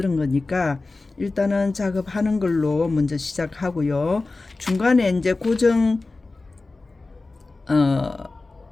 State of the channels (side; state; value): right; quieter; 3.4 dB